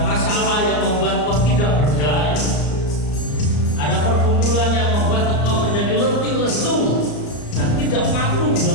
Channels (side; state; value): right; late; 34 ms